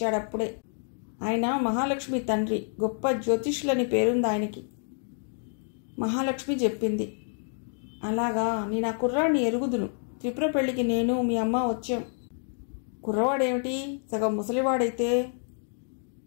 ఆయన మహాలక్ష్మి తండ్రి, గొప్ప జ్యోతిష్యులని పేరుంది ఆయనకి. మహాలక్ష్మి చెప్పింది. అలాగా, నేను ఆ కుర్రాడిని ఎరుగుదును. త్రిపుర పెళ్లికి నేను మీ అమ్మ వచ్చాం. కుర్రవాడేమిటి, సగం ముసలివాడైతే.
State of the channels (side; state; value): right; silent; 59 dB below the other